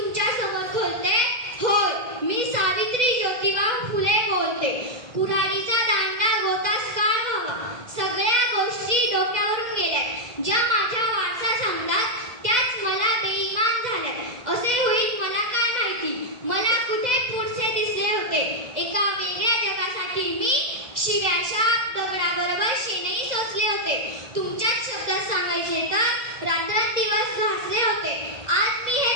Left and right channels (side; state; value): left; late; 2.0 ms